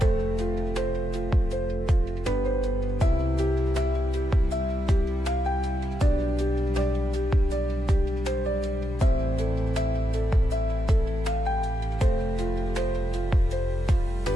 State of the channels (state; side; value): normal; both; correlation 0.83